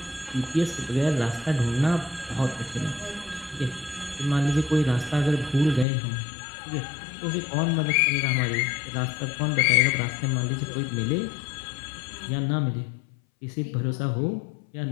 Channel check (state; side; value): drops out; right; at 5.9 s